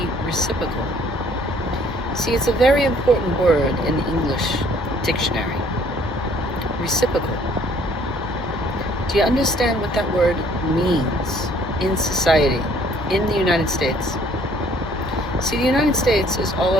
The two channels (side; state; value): both; normal; correlation 0.59